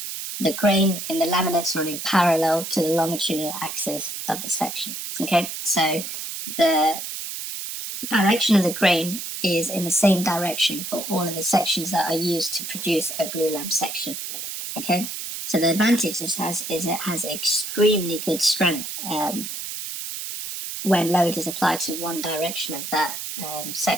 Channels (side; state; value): right; noise; hiss, 6 dB below the sound